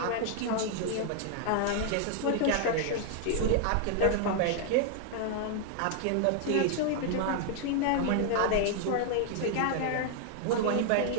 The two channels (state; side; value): different; both; correlation 0.00